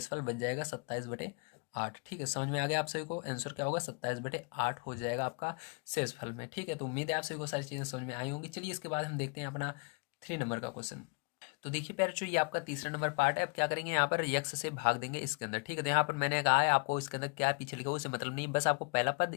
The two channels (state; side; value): quieter; right; 33.0 dB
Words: बच जाएगा 27/8। ठीक है, समझ में आ गया आप सभी को, आंसर क्या होगा, 27/8 हो जाएगा आपका शेषफल में। ठीक है, तो उम्मीद है आप सभी को सारी चीज़ें समझ में आई होंगी। चलिए इसके बाद हम देखते हैं अपना 3 नंबर का क्वेश्चन। तो देखिए पैरचू, ये आपका तीसरा नंबर पार्ट है। अब क्या करेंगे, यहाँ पर यक्स से भाग देंगे इसके अंदर। ठीक है, तो यहाँ पर मैंने कहा है आपको इसके अंदर क्या पीछे लिखा हो उससे मतलब नहीं, बस आपको पहला पद